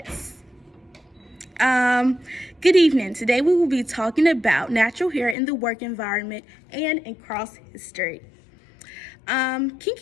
Good evening. Today we will be talking about natural hair in the work environment and in cross history.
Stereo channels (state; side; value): drops out; right; at 5.4 s